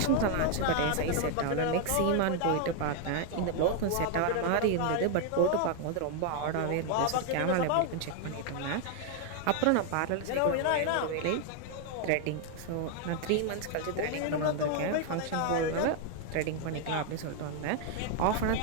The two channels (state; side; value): different; both; correlation 0.01